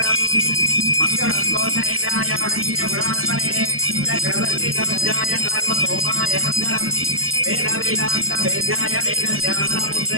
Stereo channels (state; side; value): late; left; 0.62 ms